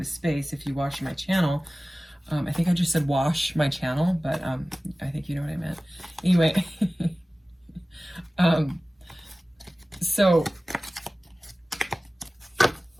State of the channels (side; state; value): both; normal; correlation 0.97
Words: space. If you watch my channel, I think I just said wash my channel, but I think you know what I meant. Anyway,